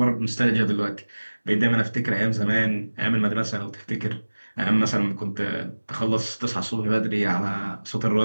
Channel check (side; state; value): both; inverted; correlation -1.00